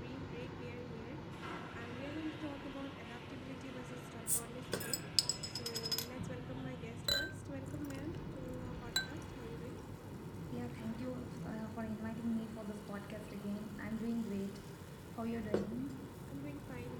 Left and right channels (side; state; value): both; identical; correlation 1.00